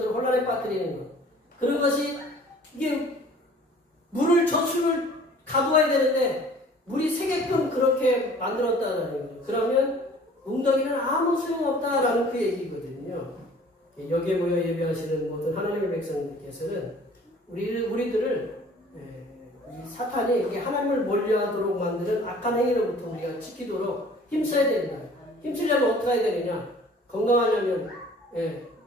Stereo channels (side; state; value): both; normal; correlation 0.50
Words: 혼란에 빠뜨리는 것. 그런 것이 이게 저수를 가두어야 되는데 물이 새게끔 그렇게 만들었다는 거예요. 그러면 웅덩이는 아무 소용없다라는 그 얘기거든요. 여기에 모여 예배하시는 모든 하나님의 백성들께서는 우리들을 이 사탄이 이게 하나님을 멀리하도록 만드는 악한 행위로부터 우리가 지키도록 힘써야 된다. 힘쓰려면 어떻게 해야 되느냐? 건강하려면